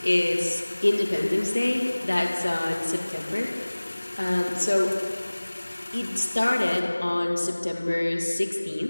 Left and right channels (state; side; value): inverted; both; correlation -1.00